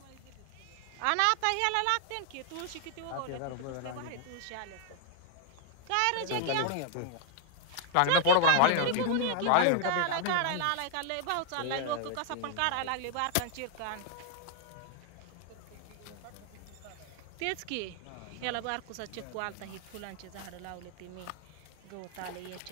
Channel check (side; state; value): both; different; correlation 0.00